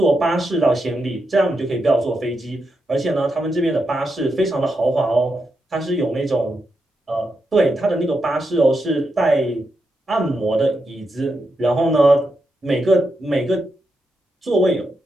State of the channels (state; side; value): normal; both; correlation 0.85